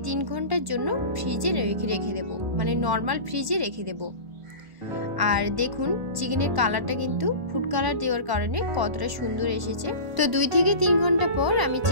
3 ঘন্টার জন্য ফ্রিজে রেখে দেব, মানে নর্মাল ফ্রিজে রেখে দেব। আর দেখুন চিকেনের কালারটা কিন্তু ফুড কালার দেওয়ার কারণে কতটা সুন্দর এসেছে। তো 2 থেকে 3 ঘন্টা পর আমি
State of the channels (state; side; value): late; left; 1.4 ms